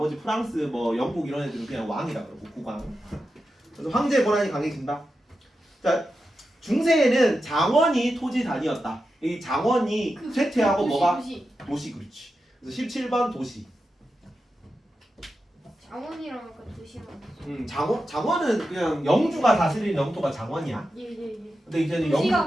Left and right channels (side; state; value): both; normal; correlation 0.90